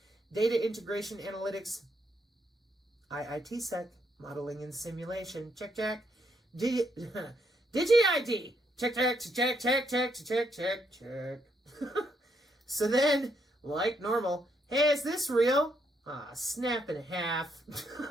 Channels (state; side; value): normal; both; correlation 0.75